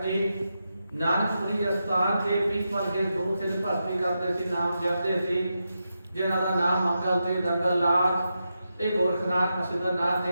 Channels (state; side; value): inverted; both; correlation -0.88